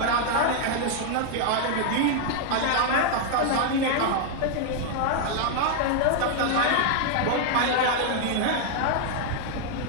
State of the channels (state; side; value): different; both; correlation 0.00